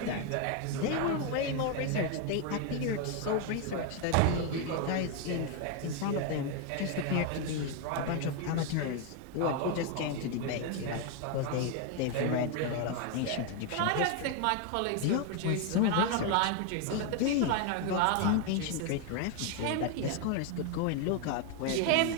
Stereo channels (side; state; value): both; different; correlation 0.01